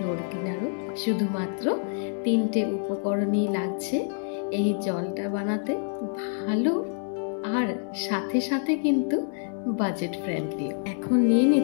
ক্লিনারও। শুধুমাত্র 3টে উপকরণই লাগছে এই জলটা বানাতে। ভালো আর সাথে সাথে কিন্তু বাজেট ফ্রেন্ডলি। এখন নিয়ে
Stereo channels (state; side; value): silent; right; 60 dB below the other